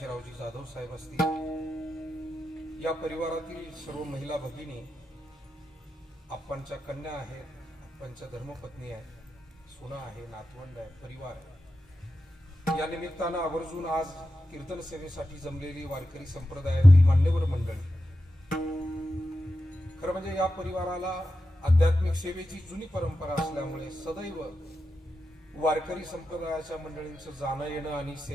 जाधव साहेब असतील, या परिवारातील सर्व महिला भगिनी, आप्पांच्या कन्या आहेत, आप्पांच्या धर्मपत्नी आहेत, सुना आहे, नातवंड आहे, परिवार आहे. या निमित्तानं आवर्जून आज कीर्तन सेवेसाठी जमलेली वारकरी संप्रदायातील मान्यवर मंडळी, खरं म्हणजे या परिवाराला आध्यात्मिक सेवेची जुनी परंपरा असल्यामुळे सदैव वारकरी संप्रदायाच्या मंडळींचं जाणं येणं आणि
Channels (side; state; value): both; normal; correlation 0.90